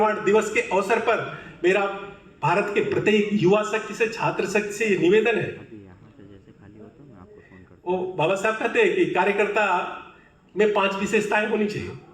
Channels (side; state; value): both; identical; correlation 1.00